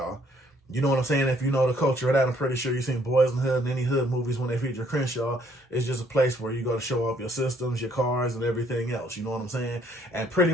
You know what I'm saying? If you know the culture of that, I'm pretty sure you've seen Boys in the Hood and any hood movies when they feature Crenshaw. It's just a place where you go to show off your systems, your cars, and everything else. You know what I'm saying? And pretty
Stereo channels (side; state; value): both; normal; correlation 0.65